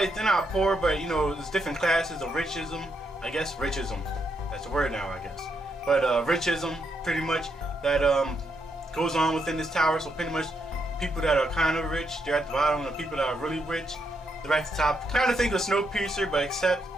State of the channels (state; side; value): normal; both; correlation 0.79